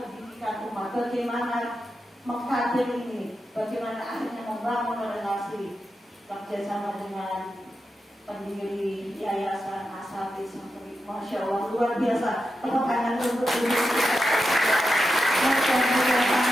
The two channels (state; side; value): normal; both; correlation 0.89